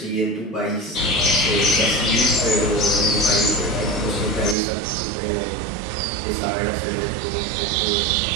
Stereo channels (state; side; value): drops out; left; at 4.5 s